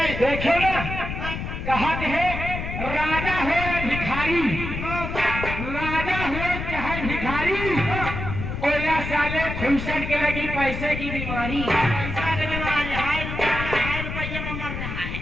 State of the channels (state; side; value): noise; left; rumble, 5 dB below the sound